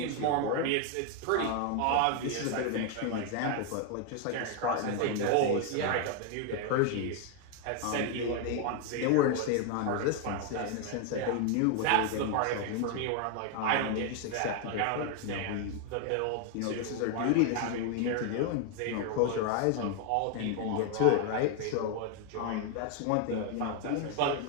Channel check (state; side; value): different; both; correlation 0.01